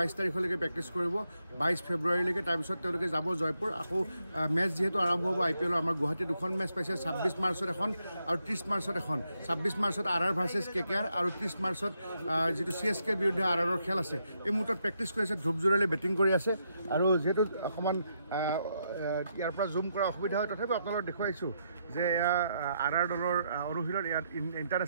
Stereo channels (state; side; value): inverted; both; correlation -0.79